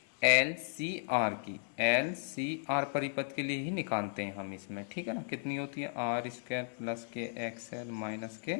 LCR की। LCR परिपथ के लिए ही निकालते हैं हम इसमें। ठीक है ना, कितनी होती है? R² प्लस के XL माइनस के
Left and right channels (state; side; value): silent; right; digital silence